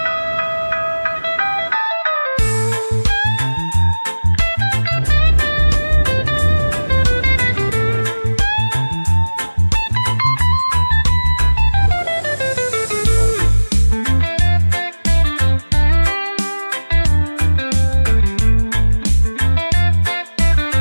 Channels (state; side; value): inverted; both; correlation -1.00